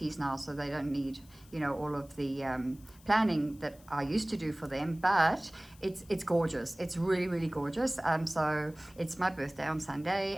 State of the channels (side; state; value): left; noise; hiss, 25 dB below the sound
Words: now, so they don't need all of the planning that I used to do for them, but it's gorgeous. It's really, really gorgeous. So it's my birthday on